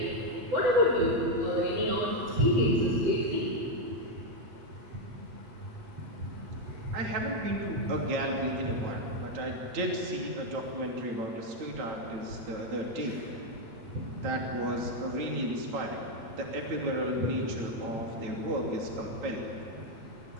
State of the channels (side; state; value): left; late; 9.0 ms